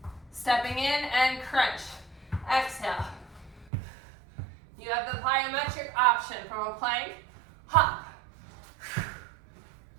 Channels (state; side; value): drops out; left; at 3.7 s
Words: Stepping in and crunch. Exhale. You have the plyometric option from a plank, hop.